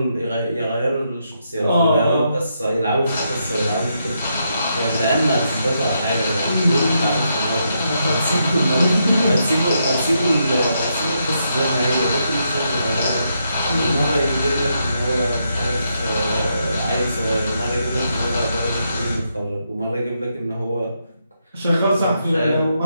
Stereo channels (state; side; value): inverted; both; correlation -0.80